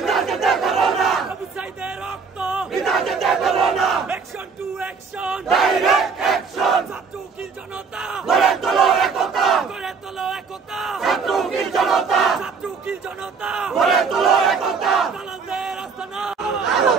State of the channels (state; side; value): quieter; left; 5.3 dB